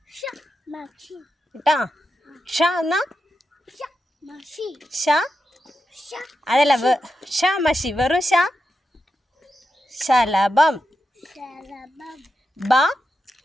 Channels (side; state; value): both; normal; correlation 0.88